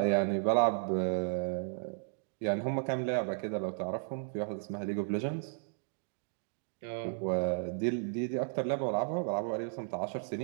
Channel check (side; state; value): left; silent; digital silence